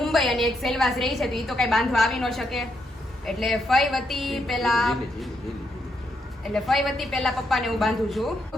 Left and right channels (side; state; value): both; normal; correlation 0.79